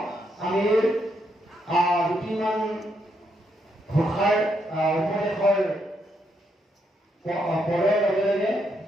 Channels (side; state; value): both; normal; correlation 0.78